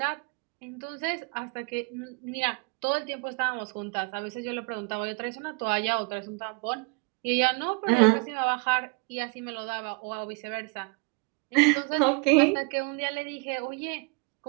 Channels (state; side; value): quieter; left; 31.5 dB